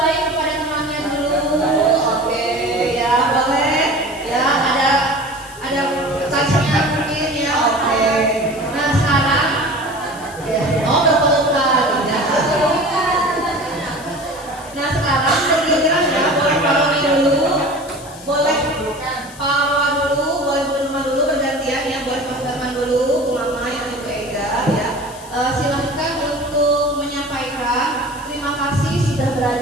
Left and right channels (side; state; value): left; noise; hiss, 19 dB below the sound